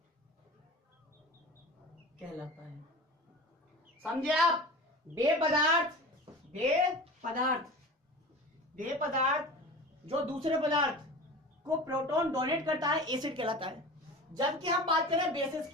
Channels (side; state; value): both; normal; correlation 0.34